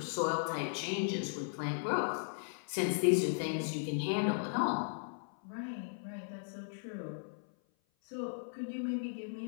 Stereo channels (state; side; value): silent; right; 53 dB below the other